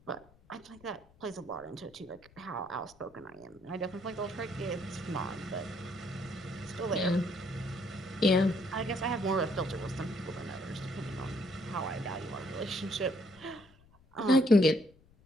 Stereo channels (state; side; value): noise; left; rumble, 27 dB below the sound